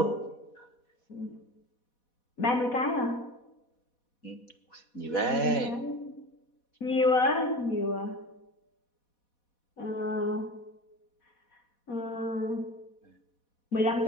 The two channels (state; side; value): late; right; 4.1 ms